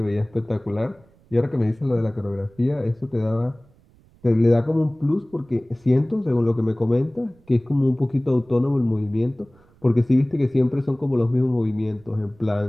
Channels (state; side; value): noise; right; rumble, 30 dB below the sound